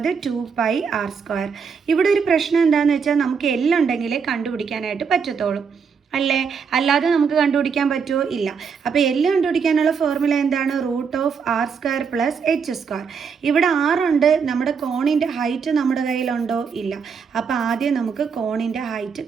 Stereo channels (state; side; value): quieter; left; 6.1 dB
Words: 2πr². ഇവിടെ ഒരു പ്രശ്നം എന്താണെന്ന് വെച്ചാൽ നമുക്ക് എല്ലുണ്ടെങ്കിലേ കണ്ടുപിടിക്കാനായിട്ട് പറ്റത്തുള്ളൂ അല്ലേ, അല്ലാതെ നമുക്ക് കണ്ടുപിടിക്കാൻ പറ്റുമോ? ഇല്ല. അപ്പോൾ എല്ല് കണ്ടുപിടിക്കാനുള്ള ഫോർമുല എന്താണ്? √r² + h². ഇവിടെ 6 ഉണ്ട്. നമ്മുടെ കോണിൻ്റെ ഹൈറ്റ് നമ്മുടെ കയ്യിലുണ്ടോ? ഇല്ല. അപ്പോൾ ആദ്യം നമുക്ക് കോണിൻ്റെ ഹൈറ്റ്